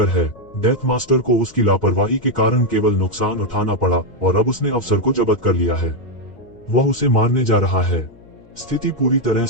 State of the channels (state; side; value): noise; left; hum, 25 dB below the sound